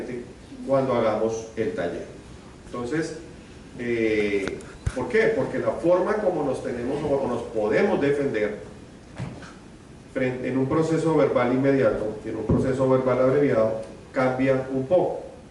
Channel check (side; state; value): both; identical; correlation 1.00